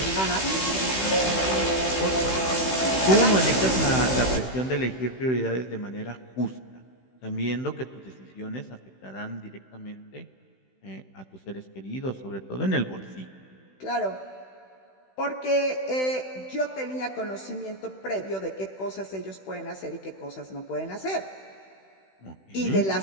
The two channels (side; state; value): right; late; 16 ms